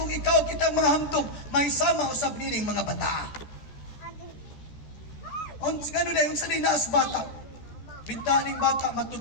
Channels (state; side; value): late; right; 13 ms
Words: ikaw kitang mga hamtog, may sama usab nining mga bata. Gano'n na yung salinas bata. Bintaning bata,